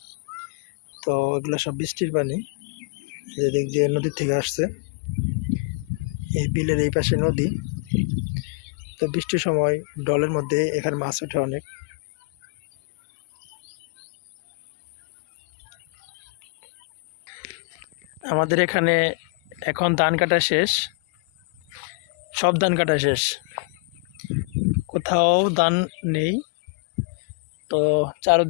তো এগুলো সব বৃষ্টির পানি, যেদিক দিয়ে নদীর থেকে আসছে। এই বিলের এই পাশে নদী। তো বৃষ্টির সময় ডলের মধ্যে এখানে মাছ ওঠে অনেক। আমাদের এখানে এখন ধান কাটা শেষ, সব ধান কাটা শেষ, কোথাও ধান নেই। তো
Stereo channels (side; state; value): right; quieter; 33.4 dB